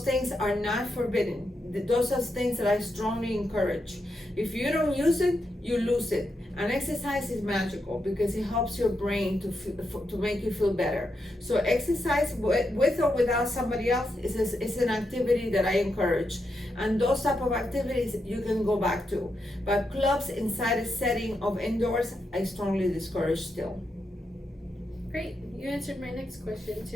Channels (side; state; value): both; normal; correlation 0.84